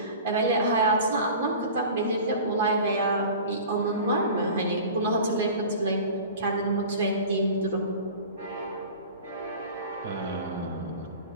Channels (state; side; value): inverted; both; correlation -0.38